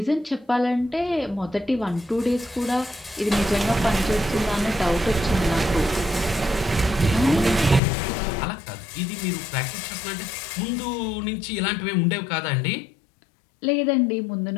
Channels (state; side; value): drops out; right; at 7.8 s